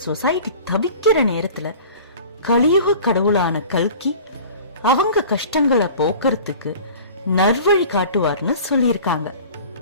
சொசைட்டி தவிக்கிற நேரத்துல கலியுக கடவுளான கல்கி அவங்க கஷ்டங்களை போக்குறதுக்கு நல்வழி காட்டுவார்னு சொல்லியிருக்காங்க.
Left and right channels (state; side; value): inverted; both; correlation -0.42